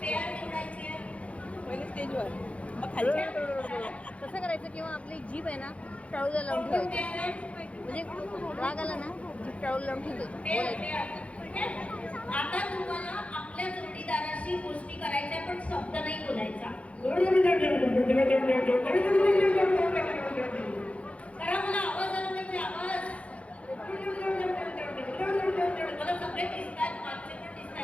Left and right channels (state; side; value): late; right; 0.063 ms